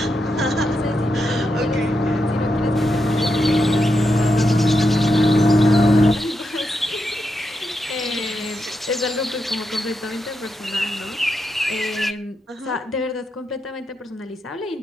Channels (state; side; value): normal; both; correlation 0.84